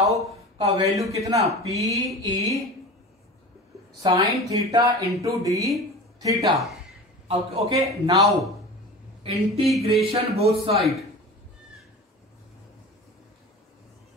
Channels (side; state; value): both; normal; correlation 0.34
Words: का वैल्यू कितना, P E sine theta into D theta. Okay, now integration both side,